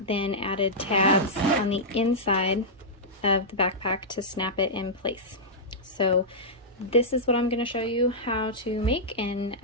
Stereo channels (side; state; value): both; normal; correlation -0.10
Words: added tabs on the inside of the backpack to snap it in place. So this is what I'm going to show you how to make, and